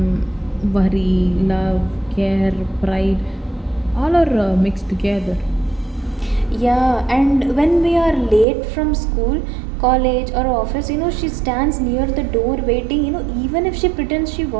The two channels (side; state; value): left; drops out; at 8.5 s